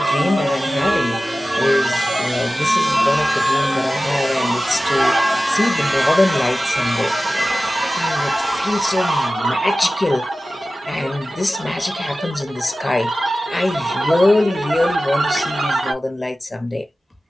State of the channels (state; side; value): normal; both; correlation 0.96